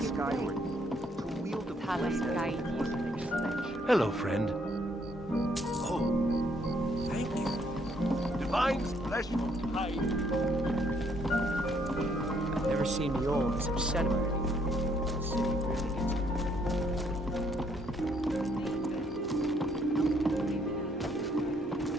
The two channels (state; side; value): normal; both; correlation 0.68